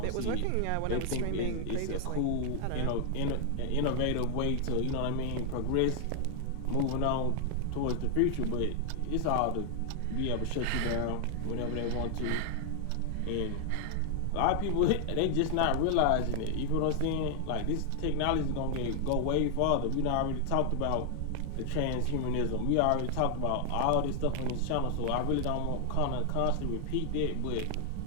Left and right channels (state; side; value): different; both; correlation 0.00